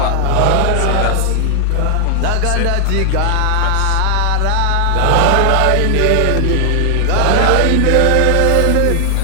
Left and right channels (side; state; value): both; different; correlation 0.00